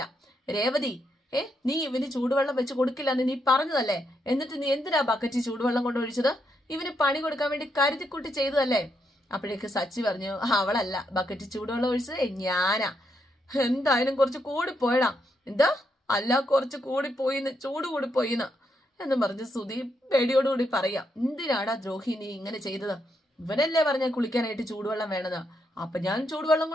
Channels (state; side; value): normal; both; correlation 0.79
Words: രേവതി നീ ഇവന് ചൂടുവെള്ളം വെച്ച് കൊടുക്കില്ലെന്ന് നീ പറഞ്ഞതല്ലേ, എന്നിട്ട് നീ എന്തിനാ ബക്കറ്റ് ചൂടുവെള്ളം കൊണ്ട് ഒഴിച്ചത്, ഇവന് പണി കൊടുക്കാൻ വേണ്ടി കരുതിക്കുട്ടി ചെയ്തതല്ലേ. അപ്പോഴേക്ക് സച്ചി പറഞ്ഞു, അവളല്ല ബക്കറ്റ് ചൂടുവെള്ളം ഒഴിച്ചത്, ഞാനാ. എന്തായാലും കുറച്ച് കൂടിപ്പോയടാ. എന്താ അല്ല, കുറച്ച് ചൂട് കൂടിപ്പോയിന്ന് എന്നും പറഞ്ഞ് ശ്രുതി പേടിയോടുകൂടി പറയാം. എന്തിനാടാ ദ്രോഹി നീ ഇങ്ങനെ ചെയ്തത്, ഇവനല്ലേ പറഞ്ഞ കുളിക്കാനായിട്ട് ചൂടുവെള്ളം വേണമെന്ന്, അപ്പൊ ഞാൻ ചൂടുവെള്ളം